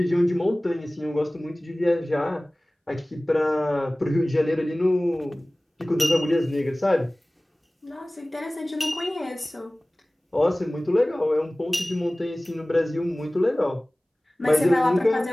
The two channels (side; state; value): both; normal; correlation 0.98